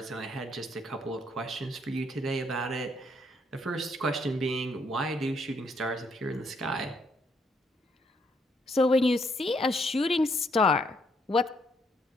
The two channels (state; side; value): normal; both; correlation 0.72